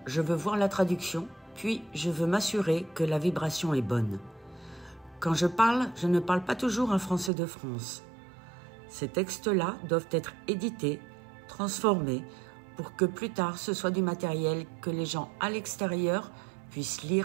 je veux voir la traduction, puis je veux m'assurer que la vibration est bonne. Quand je ne parle pas toujours un français de France. Ces textes-là doivent être édités, transformés, pour que plus tard ce soit du matériel que les gens à l'extérieur puissent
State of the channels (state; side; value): drops out; left; at 7.3 s